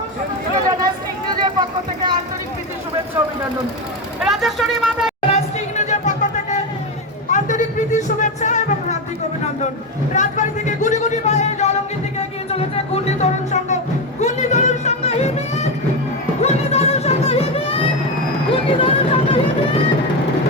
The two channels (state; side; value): normal; both; correlation 0.13